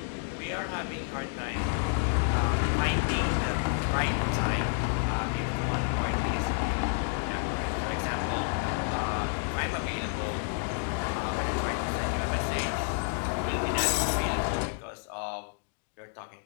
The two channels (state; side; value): silent; right; 58 dB below the other